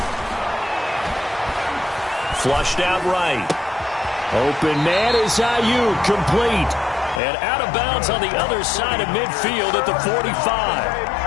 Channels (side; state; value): right; drops out; at 7.2 s